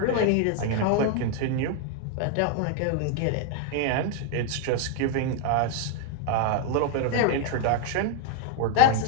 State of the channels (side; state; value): both; different; correlation 0.00